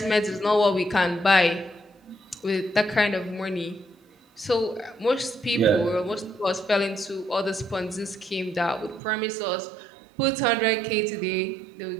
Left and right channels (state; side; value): drops out; left; at 9.0 s